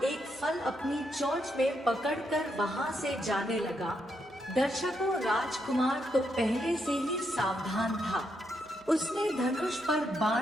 एक फल अपनी चोंच में पकड़कर वहां से जाने लगा। दर्शकों, राजकुमार तो पहले से ही सावधान था। उसने धनुष पर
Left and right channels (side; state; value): right; noise; hum, 27 dB below the sound